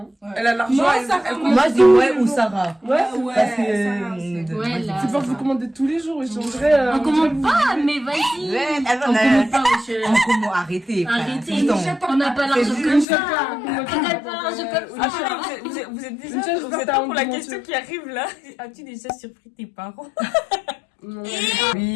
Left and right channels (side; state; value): right; drops out; at 13.1 s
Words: Ouais. Elle a l'argent. Moi, elle- ça elle- commence Moi, je dis ouais ou Sarah. Ouais, Parce que. Ouais, là. c'est pas vous commander tous les jours. J'aimerais. On commande pas, mais vas-y. Ouais, On commande pas, wesh. Arrêtez. frère. Arrêtez. C'est ton- On n'a pas l'argent C'est comme juste ça. ça. On n'a pas l'argent comme ça. Attends, vous êtes Une déjà, chose, vous êtes t'as prêts pour la honte de question mentir. qui arrive là? As-tu déjà surpris tes parents? Non.